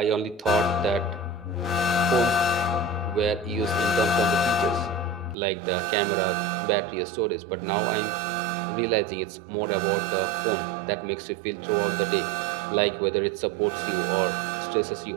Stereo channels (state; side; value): drops out; left; at 5.4 s